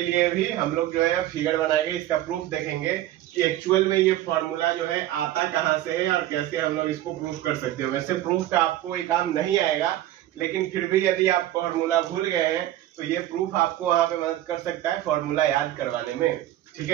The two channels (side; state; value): left; quieter; 13.7 dB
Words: लिए भी हम लोग जो है फिगर बनाएंगे, इसका प्रूफ देखेंगे कि एक्चुअल में ये फॉर्मूला जो है आता कहाँ से है और कैसे हम लोग इसको प्रूफ कर सकते हो। वैसे प्रूफ का आपको ये काम नहीं आएगा, लेकिन फिर भी यदि आप फॉर्मूला भूल गए हैं तो ये प्रूफ आपको वहां पे मदद कर सकता है फॉर्मूला याद करवाने में। ठीक